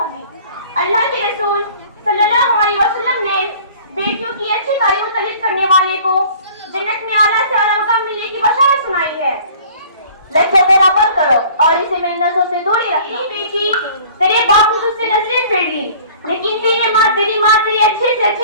अल्लाह के रसूल सल्लल्लाहु अलैहि वसल्लम ने बेटियों की अच्छी तालीम और तरबियत करने वाले को जन्नत में आला से आला मकाम मिलने की बशारत सुनाई है। लक्ष्य मेरा बंद करो और इसे मेरी नजरों से दूरी रखना। बेटी, तेरे बाप ने तुझसे नजरें फेर ली, लेकिन तेरी माँ तेरी अच्छे से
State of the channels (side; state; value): both; inverted; correlation -0.49